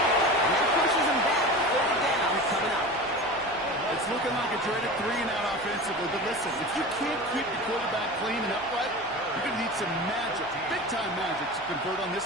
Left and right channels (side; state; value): left; noise; hum, 23 dB below the sound